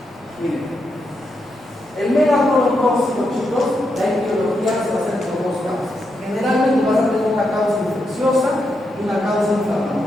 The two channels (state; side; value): noise; right; rumble, 28 dB below the sound